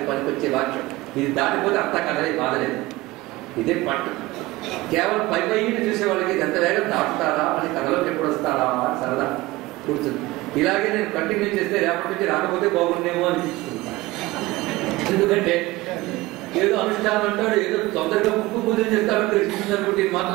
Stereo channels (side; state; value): left; quieter; 19.6 dB